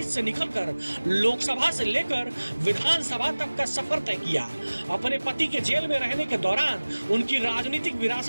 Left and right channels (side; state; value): both; inverted; correlation -1.00